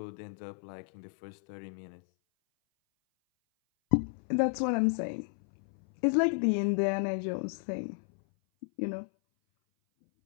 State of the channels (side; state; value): right; silent; 56 dB below the other